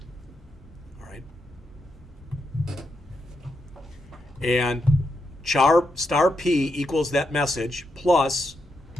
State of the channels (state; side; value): normal; both; correlation 0.83